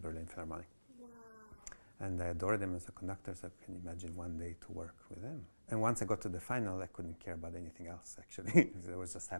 Philharmonic. Wow. And I adored him as a conductor, so I can imagine one day to work with him. And once I got to the final, I couldn't care about anything else, actually. I was just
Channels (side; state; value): both; inverted; correlation -1.00